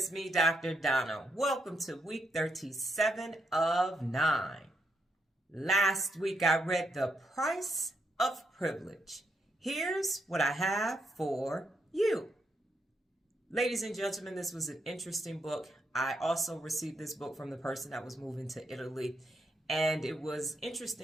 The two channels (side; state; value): both; normal; correlation 0.79